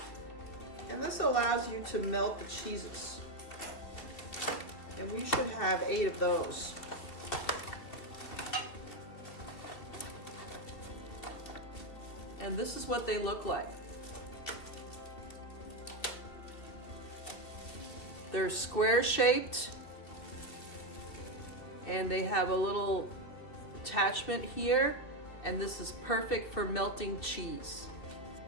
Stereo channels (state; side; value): late; right; 3.0 ms